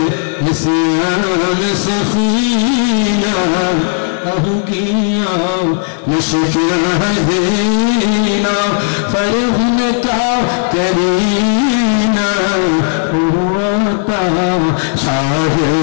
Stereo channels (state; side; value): silent; right; digital silence